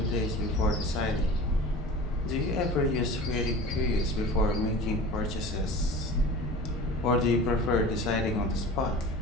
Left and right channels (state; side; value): normal; both; correlation 0.37